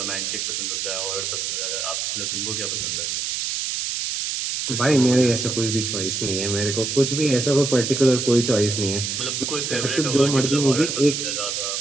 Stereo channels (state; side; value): noise; right; hiss, 2 dB below the sound